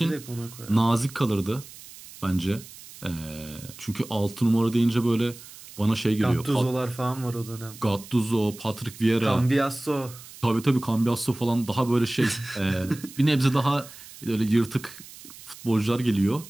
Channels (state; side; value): noise; right; hiss, 18 dB below the sound